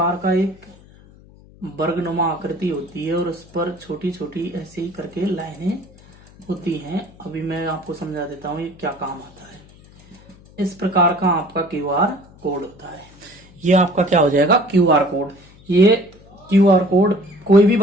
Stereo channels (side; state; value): left; noise; hum, 24 dB below the sound